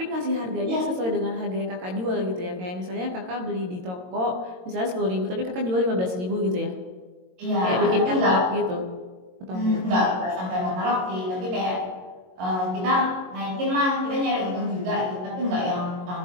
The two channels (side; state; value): left; late; 22 ms